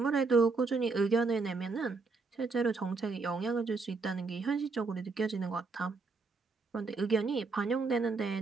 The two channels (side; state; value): left; quieter; 4.2 dB